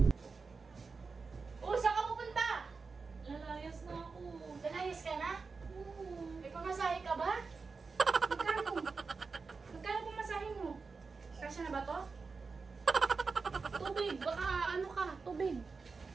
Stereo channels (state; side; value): quieter; left; 4.6 dB